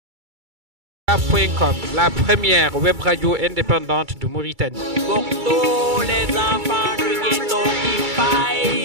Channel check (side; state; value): left; late; 2.3 ms